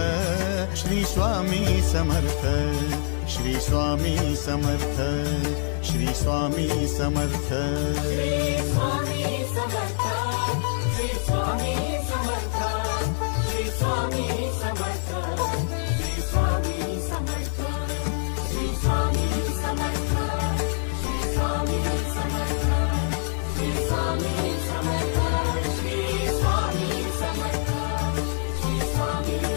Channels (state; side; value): silent; right; 62 dB below the other